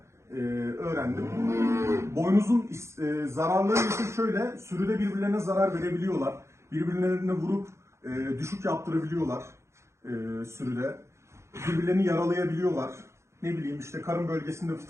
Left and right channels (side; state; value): left; late; 0.13 ms